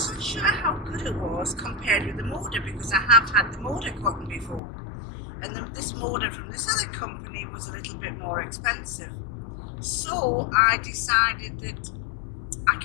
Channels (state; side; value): drops out; right; at 4.6 s